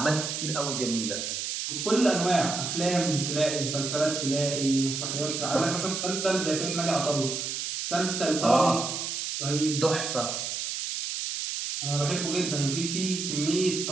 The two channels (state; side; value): noise; right; hiss, 3 dB below the sound